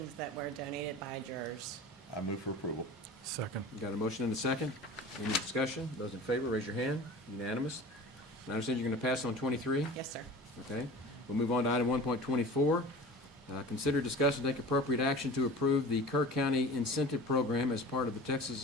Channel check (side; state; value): both; normal; correlation 0.37